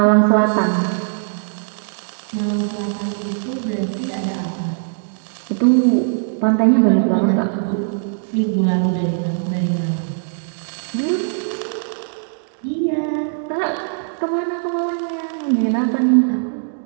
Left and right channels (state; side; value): silent; left; digital silence